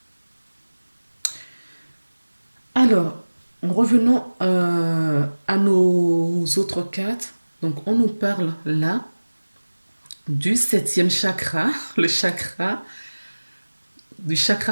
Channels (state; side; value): inverted; both; correlation -1.00